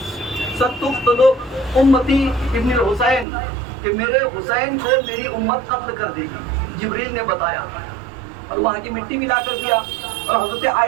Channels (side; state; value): left; drops out; at 3.2 s